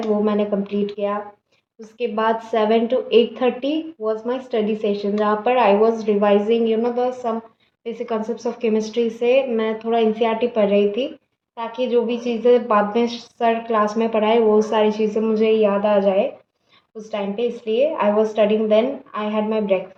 वो मैंने कंप्लीट किया। उसके बाद 7 to 8:30 was my study session, जहाँ पर I was revising the some basic concepts of chemistry से मैं थोड़ा एनसीईआरटी पढ़ रही थी, ताकि जो भी चीज़ें बाद में सर क्लास में पढ़ाए वो सारी चीज़ें मुझे याद आ जाए उस टाइम पे। इसलिए I was studying, then I had my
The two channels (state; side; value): identical; both; correlation 1.00